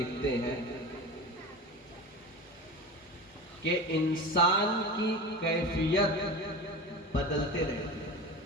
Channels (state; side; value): normal; both; correlation 0.29